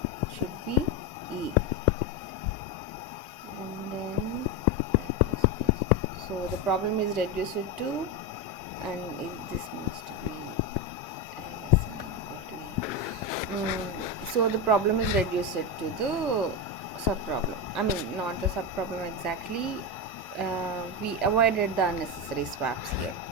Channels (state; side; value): normal; both; correlation 0.13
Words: should be e. And then, so the problem is reduced to 2, and this must be so the problem is reduced to the subproblem. Not the subproblem exactly. We avoided the unnecessary swaps here.